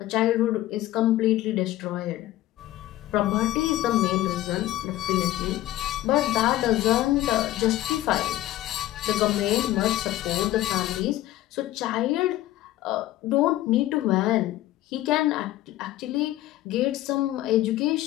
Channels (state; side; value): quieter; right; 15.1 dB